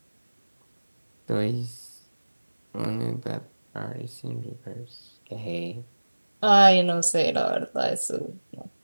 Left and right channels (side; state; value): both; inverted; correlation -1.00